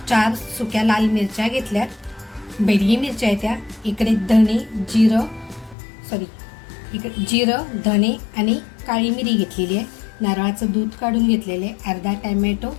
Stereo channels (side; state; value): right; drops out; at 5.8 s